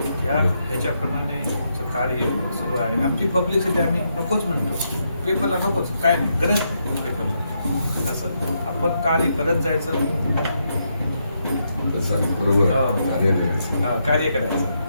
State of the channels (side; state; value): both; inverted; correlation -0.80